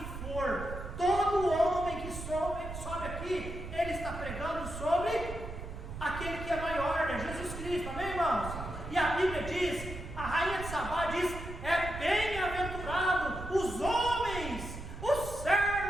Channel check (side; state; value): right; noise; rumble, 9 dB below the sound